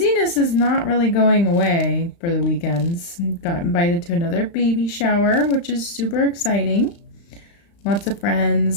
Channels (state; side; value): late; right; 35 ms